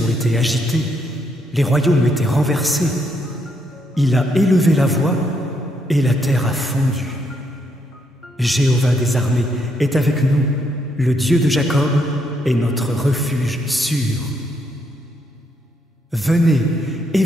été agitées, les royaumes étaient renversés. Il a élevé la voix et la terre a fondu. Jéhovah des armées est avec nous, le Dieu de Jacob est notre refuge sûr. Venez et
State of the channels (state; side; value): normal; both; correlation 0.75